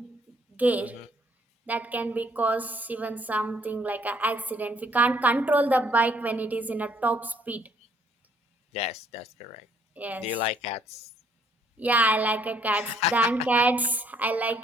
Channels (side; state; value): both; normal; correlation 0.65